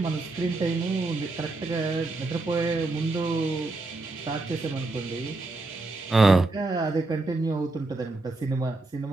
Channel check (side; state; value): left; quieter; 3.2 dB